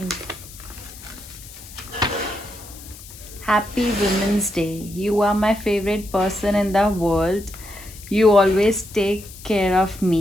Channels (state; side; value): noise; left; hiss, 17 dB below the sound